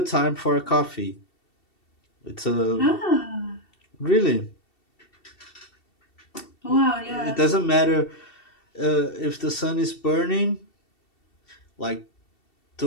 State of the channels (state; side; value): late; right; 2.7 ms